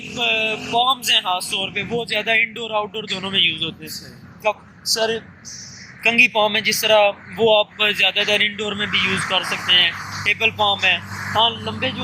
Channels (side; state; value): both; identical; correlation 1.00